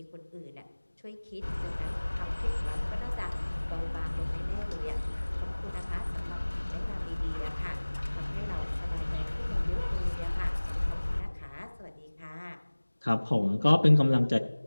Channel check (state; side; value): inverted; both; correlation -1.00